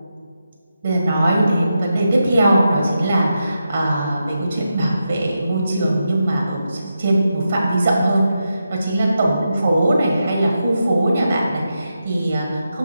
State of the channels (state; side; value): inverted; both; correlation -0.87